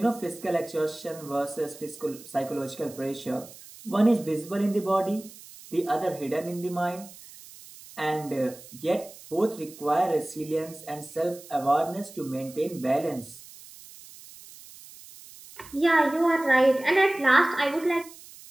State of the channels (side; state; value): right; noise; hiss, 19 dB below the sound